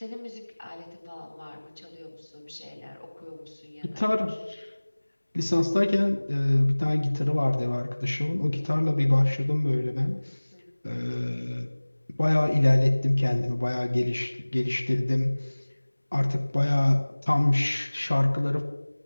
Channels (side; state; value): both; inverted; correlation -1.00